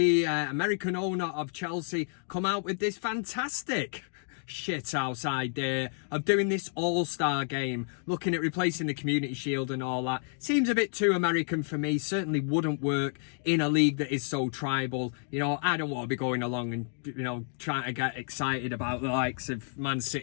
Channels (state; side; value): silent; right; 58 dB below the other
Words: American owner of Chelsea, come out with this fantastic shithouse idea of doing this all-star game, looking at replacing the Community Shield and all that. Seems a bit too American for me. Certainly wouldn't work in a league that is so tribal. You know, I don't want to be going along and, you know, trying to get excited about the likes of Man